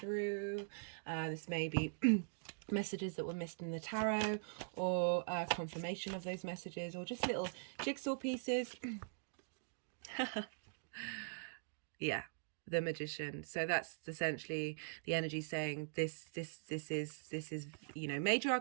This may be messages that were missed in the tarot, or confirmation of those messages, or just little jigsaw pieces. Yeah, the Magician. So that's essentially the energy saying this is, you know, major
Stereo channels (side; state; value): left; silent; digital silence